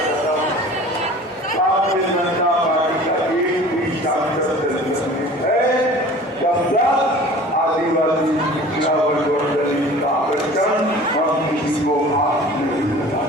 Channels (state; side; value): normal; both; correlation 0.43